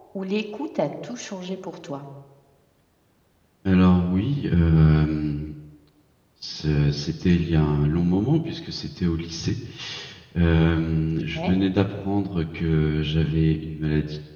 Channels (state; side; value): identical; both; correlation 1.00